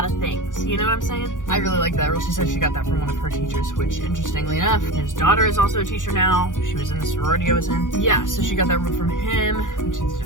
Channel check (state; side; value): late; right; 0.87 ms